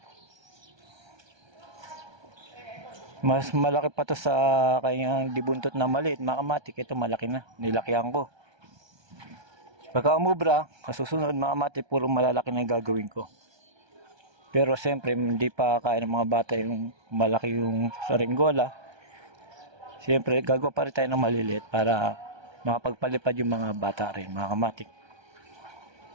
Mas malaki pa to sa kanyang dibuntot na maliit mga matik. Ito malaki na, nilakihan ko. Pagka umubra, kasusunod mga matik, puro malalaki na gagawin ko. Pero siyempre, hindi pa kaya ng mga bata yung malaki yung saringgola. Siyempre, gagawa pa rin tayo ng maliliit para makapagpalipad yung mga bata rin, mga kamatik.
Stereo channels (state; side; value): late; left; 1.3 ms